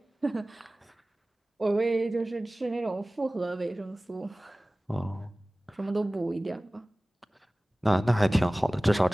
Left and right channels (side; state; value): both; normal; correlation 0.98